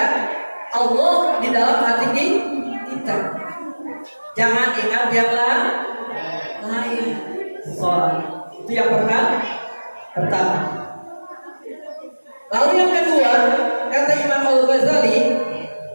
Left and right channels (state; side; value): inverted; both; correlation -1.00